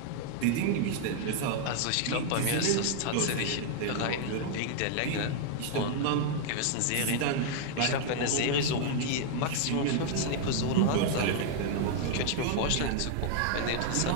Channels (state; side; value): different; both; correlation 0.00